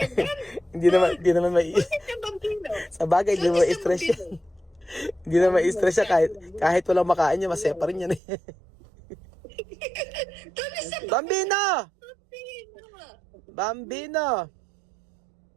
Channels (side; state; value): left; drops out; at 8.2 s